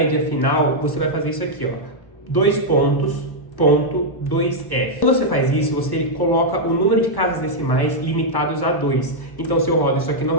final, você vai fazer isso aqui, ó. 2 pontos. Ponto 2F. Quando você faz isso, você coloca o número de casas decimais limitados a 2. Então, se eu rodo isso aqui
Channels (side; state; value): right; late; 1.0 ms